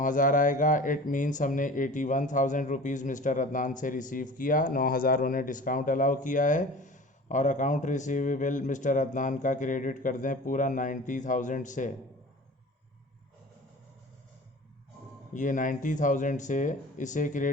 आएगा। इट मीन्स हमने 81,000 रुपीज़ मिस्टर अदनान से रिसीव किया, 9,000 उन्हें डिस्काउंट अलाउ किया है। और अकाउंट रिसीवेबल मिस्टर अदनान का क्रेडिट कर दें पूरा 90,000 से। ये 90,000 से इसे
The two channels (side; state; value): both; normal; correlation 0.40